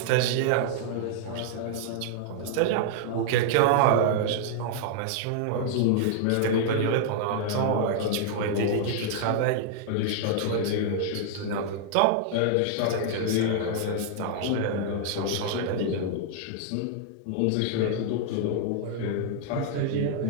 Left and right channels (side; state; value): both; different; correlation -0.01